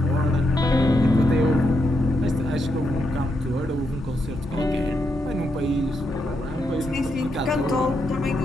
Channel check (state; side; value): normal; both; correlation 0.81